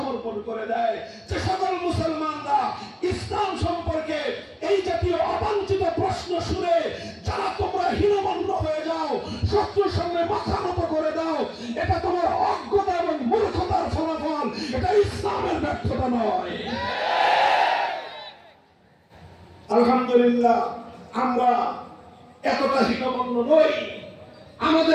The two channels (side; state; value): both; identical; correlation 1.00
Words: করে দেয়। যে সকল মুসলমানরা ইসলাম সম্পর্কে এই জাতীয় অবাঞ্ছিত প্রশ্ন শুনে যারা তোমরা হীনমন্য হয়ে যাও, শত্রুর সামনে মাথা নত করে দাও, এটা তোমার অজ্ঞতা এবং মূর্খতার ফলাফল, এটা ইসলামের ব্যর্থতা নয়। আলহামদুলিল্লাহ আমরা এতটা হীনমন্য নই,